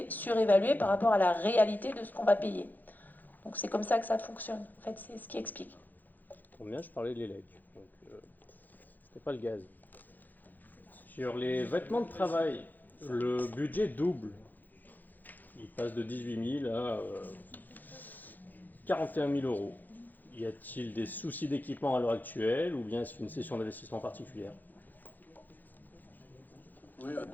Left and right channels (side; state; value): right; late; 0.085 ms